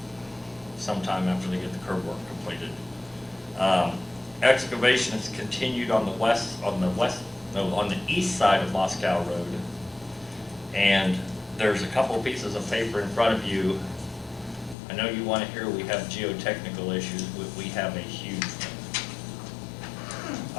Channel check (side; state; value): right; drops out; at 14.8 s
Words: sometime after they get the curb work completed. Excavation has continued on the east side of Moscow Road, and there's a couple of pieces of paper in front of you. I know you want to hear we have geotechnical issues, but we have a huge one.